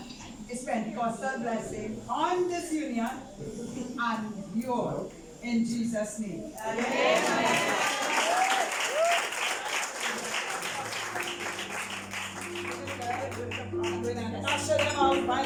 His Pentecostal blessing on this union and you all in Jesus' name. I'm going to usher them out by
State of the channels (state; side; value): identical; both; correlation 1.00